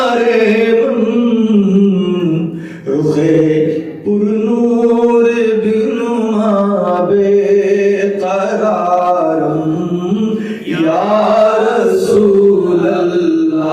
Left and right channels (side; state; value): both; identical; correlation 1.00